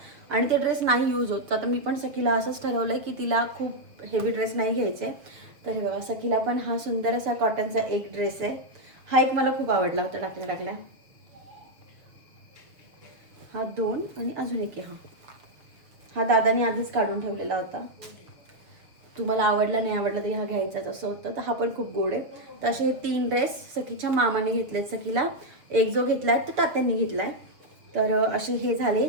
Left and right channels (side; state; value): left; late; 6.8 ms